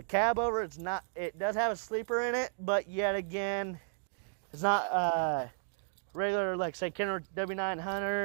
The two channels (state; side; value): silent; left; digital silence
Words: cab over. It does have a sleeper in it, but yet again, it's not regular, like say Kenworth